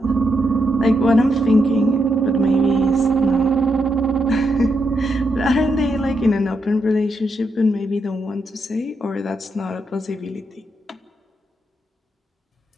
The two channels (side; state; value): both; normal; correlation 0.82